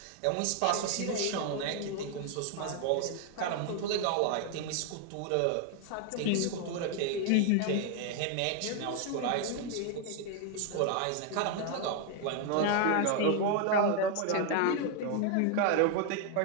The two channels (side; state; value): both; different; correlation 0.00